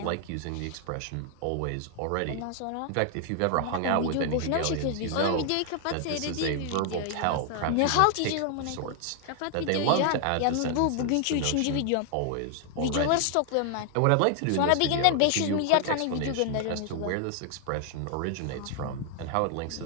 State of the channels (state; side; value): different; both; correlation 0.00